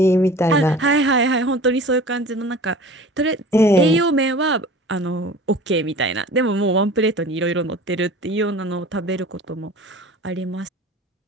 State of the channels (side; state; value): both; normal; correlation 0.41